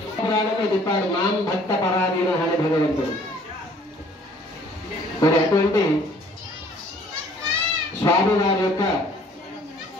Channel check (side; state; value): both; normal; correlation 0.57